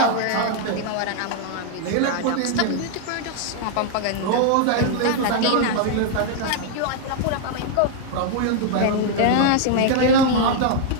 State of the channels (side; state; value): both; different; correlation 0.00